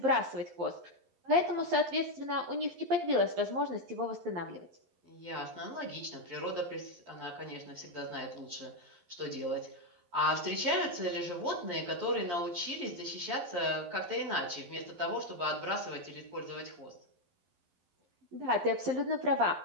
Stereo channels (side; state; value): left; late; 11 ms